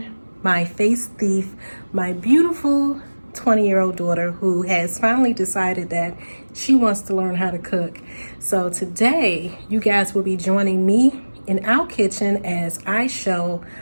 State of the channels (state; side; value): inverted; both; correlation -1.00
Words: my face thief, my beautiful 20-year-old daughter who has finally decided that she wants to learn how to cook. So today you guys will be joining me in our kitchen as I show